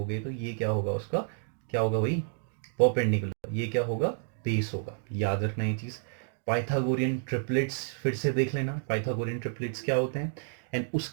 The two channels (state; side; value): silent; left; digital silence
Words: तो ये क्या होगा, उसका क्या होगा भाई, परपेंडिकुलर। ये क्या होगा, बेस होगा। याद रखना ये चीज़। पाइथागोरियन ट्रिपलेट्स फिर से देख लेना, पाइथागोरियन ट्रिपलेट्स क्या होते हैं। एंड